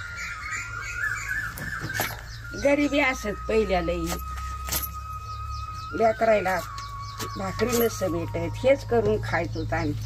गरिबी असत पहिल्या लई, लेकरायला भाकरी नसतं भेटत, हेच करून खायचो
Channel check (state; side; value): identical; both; correlation 1.00